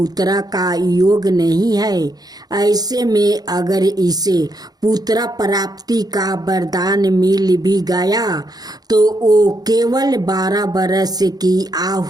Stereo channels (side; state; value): left; late; 0.19 ms